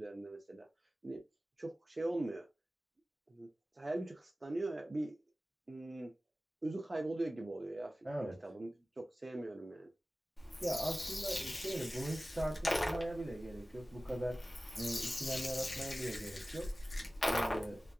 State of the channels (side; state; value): both; normal; correlation 0.96